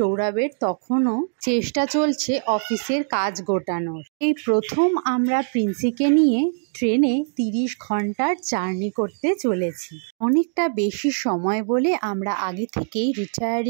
তখনও চেষ্টা চলছে অফিসের কাজ গোটানোর। এই প্রথম আমরা প্রিন্সিকে নিয়ে ট্রেনে 30 ঘন্টার জার্নি করতে চলেছি। অনেকটা বেশি সময় বলে আমরা আগে থেকেই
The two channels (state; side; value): silent; left; digital silence